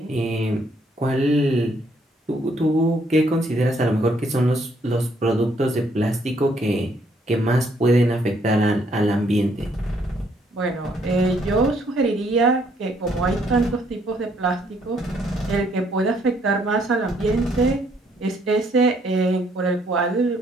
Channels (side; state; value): both; normal; correlation 0.68